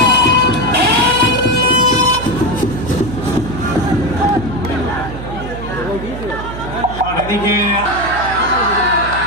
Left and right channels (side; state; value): right; noise; hum, 10 dB below the sound